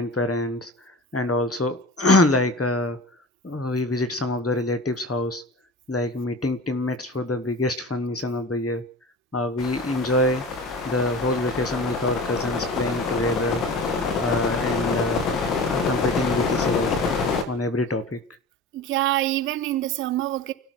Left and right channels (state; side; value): normal; both; correlation 0.34